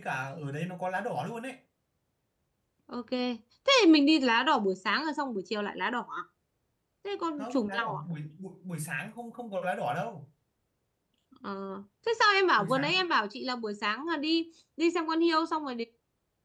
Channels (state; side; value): identical; both; correlation 1.00